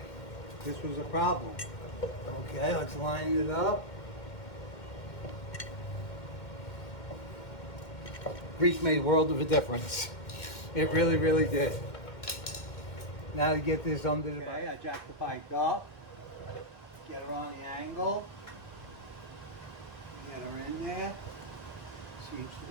This was a problem. Okay, let's line it up. Grease made a world of a difference. It really, really did. Now to get this under the bike, I jack the bike up, get her on the angle, get her in there. Seems to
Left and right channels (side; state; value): right; late; 2.0 ms